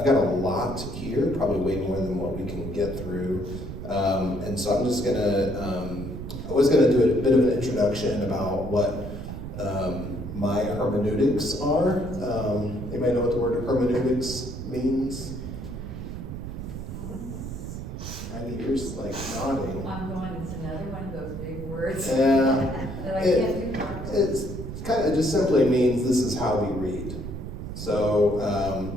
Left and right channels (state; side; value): noise; right; rumble, 8 dB below the sound